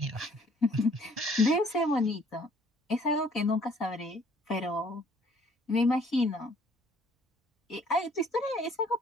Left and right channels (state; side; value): normal; both; correlation 0.59